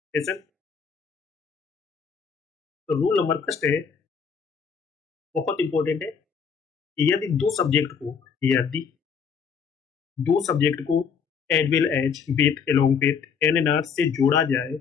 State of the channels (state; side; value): quieter; right; 6.4 dB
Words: सेशन। तो रूल नंबर फर्स्ट है, बहुत इंपॉर्टेंट है। यदि दो सब्जेक्ट को as well as with along with एन से जोड़ा जाए